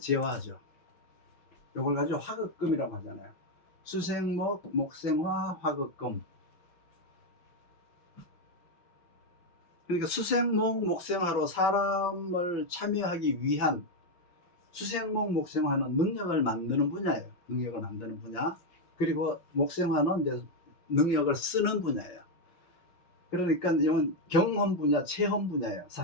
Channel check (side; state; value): right; late; 5.9 ms